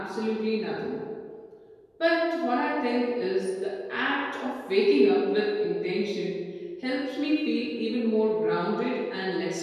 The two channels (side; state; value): both; identical; correlation 1.00